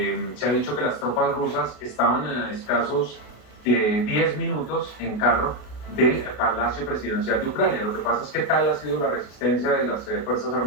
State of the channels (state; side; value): late; right; 33 ms